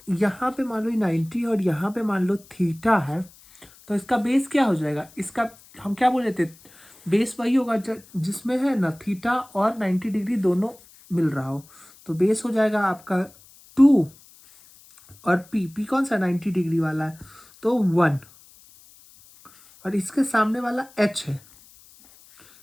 यहाँ पे मान लो 90 और यहाँ पे मान लो थीटा है, तो इसका बेस क्या हो जाएगा, इसका हम क्या बोले थे, बेस वही होगा जिसमें है ना थीटा और 90 डिग्री दोनों मिल रहा हो। तो बेस हो जाएगा आपका 2 और पी कौन सा 90 डिग्री वाला है, तो 1। और इसके सामने वाला एच है,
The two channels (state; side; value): noise; left; hiss, 25 dB below the sound